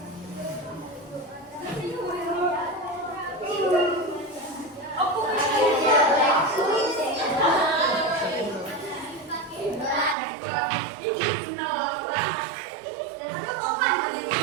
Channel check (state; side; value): drops out; left; at 10.2 s